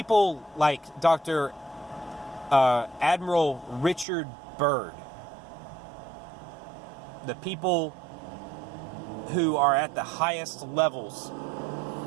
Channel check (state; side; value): drops out; left; at 4.0 s